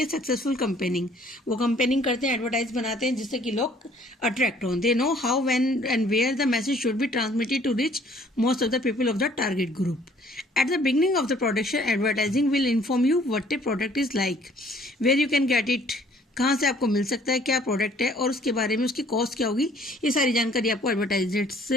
successful campaigning. वो कंपेनिंग करते हैं, एडवर्टाइज बनाते हैं जिससे कि लोग अट्रैक्ट हों। They know how when and where the message should be transmitted to reach most of the people of the target group. At the beginning of the production, advertising will inform you what the product is like, where you can get it, कहाँ से आपको मिल सकता है, क्या प्रोडक्ट है और उसके बारे में उसकी कॉस्ट क्या होगी। ये सारी जानकारी आपको एडवर्टाइजमेंट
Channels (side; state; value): both; normal; correlation 0.58